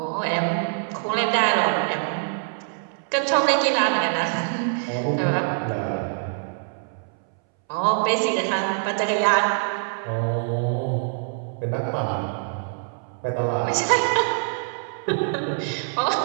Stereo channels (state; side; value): silent; left; 62 dB below the other